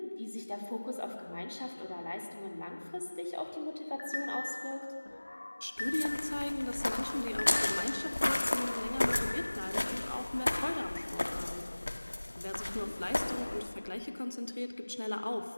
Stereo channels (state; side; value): inverted; both; correlation -1.00